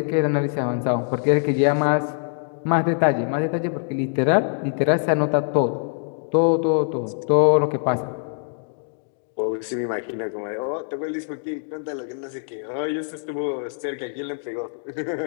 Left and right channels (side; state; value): right; silent; digital silence